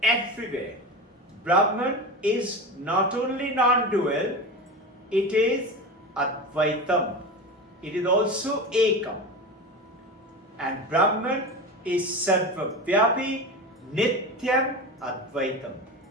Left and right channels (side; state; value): both; normal; correlation 0.26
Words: Everywhere. Brahman is not only non-dual, it is Advaitam. It is also Ekam. And Brahman is Sarvavyapi Nityam Advaitam.